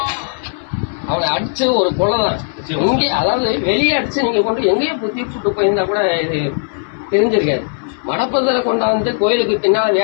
அவனை அடிச்சு ஒரு கொலைதான் இங்கே, அதாவது வெளியே அடிச்சு நீங்க கொண்டு எங்கேயோ தீர்ச்சுட்டு போயிருந்தா கூட இது தெரிஞ்சிருக்காது. மடப்பதில் கொண்டாந்து கோயிலுக்கு பின்னால்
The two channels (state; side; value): silent; right; 64 dB below the other